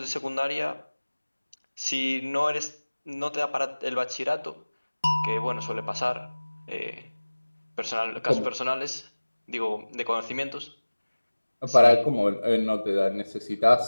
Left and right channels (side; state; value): both; inverted; correlation -1.00